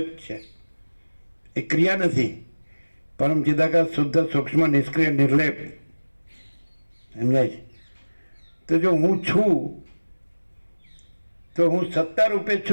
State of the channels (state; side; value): inverted; both; correlation -1.00